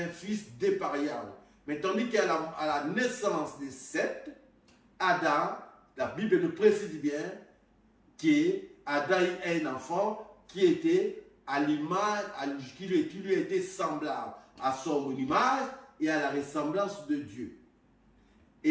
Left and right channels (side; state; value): both; identical; correlation 1.00